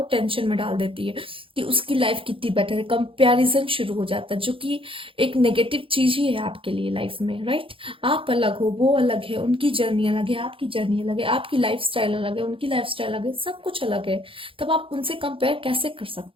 टेंशन में डाल देती है कि उसकी लाइफ कितनी बेटर है, कंपैरिजन शुरू हो जाता है, जो कि एक नेगेटिव चीज ही है आपके लिए लाइफ में, राइट। आप अलग हो, वो अलग है, उनकी जर्नी अलग है, आपकी जर्नी अलग है, आपकी लाइफ स्टाइल अलग है, उनकी लाइफ स्टाइल अलग है, सब कुछ अलग है, तब आप उनसे कंपेयर कैसे कर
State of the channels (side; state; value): left; late; 0.26 ms